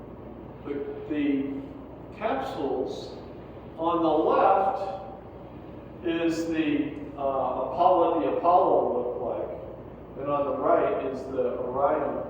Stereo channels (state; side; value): identical; both; correlation 1.00